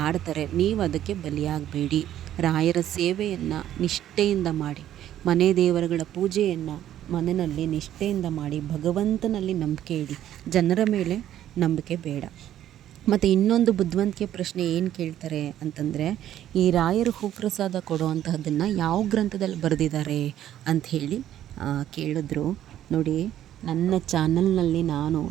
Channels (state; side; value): quieter; left; 11.7 dB